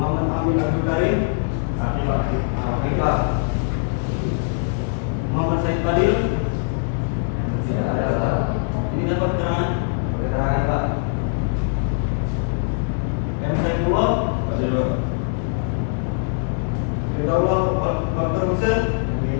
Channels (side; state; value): right; silent; 64 dB below the other